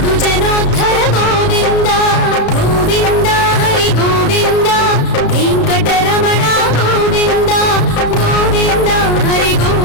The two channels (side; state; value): right; late; 33 ms